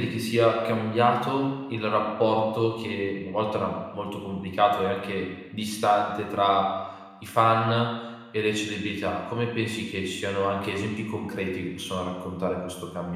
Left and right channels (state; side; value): identical; both; correlation 1.00